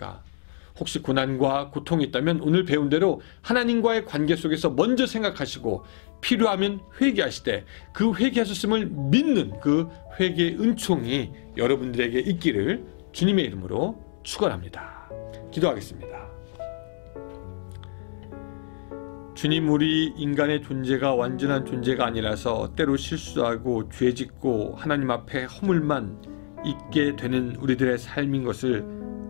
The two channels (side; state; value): right; silent; digital silence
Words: 혹시 고난과 고통이 있다면 오늘 배운 대로 하나님과의 관계 속에서 먼저 생각하시고 필요하면 회개하시되 그 회개하셨음을 믿는 그 회개의 은총이 여러분들에게 있기를 주님의 이름으로 축원합니다. 기도하겠습니다. 주님, 우리 인간의 존재가 완전한 존재가 아니라서 때로 실수하고 죄짓고 하나님 앞에 허물만 있게 되는 우리들의 삶인 것을